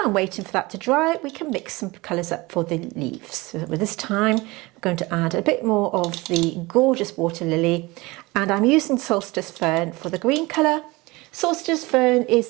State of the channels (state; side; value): quieter; left; 22.5 dB